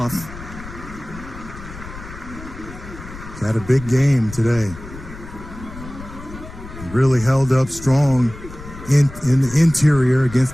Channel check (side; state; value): left; noise; rumble, 14 dB below the sound